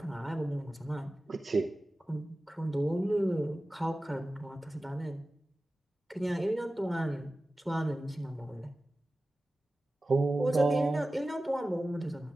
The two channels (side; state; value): both; normal; correlation 0.96